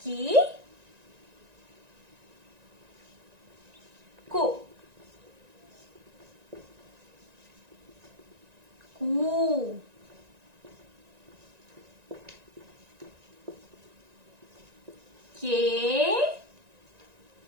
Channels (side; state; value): left; late; 1.9 ms